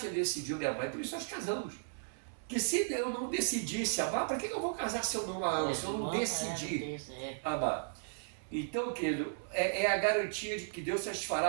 decidiu me amar, e por isso nós casamos. Porque se eu não decidisse amar, para que eu vou casar se eu não a amo, se eu não decidi amar? Então, querido, é a garantia de que Deus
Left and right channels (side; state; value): left; silent; 54 dB below the other